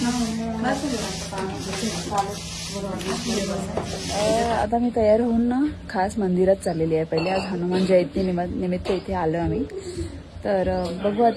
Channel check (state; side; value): identical; both; correlation 1.00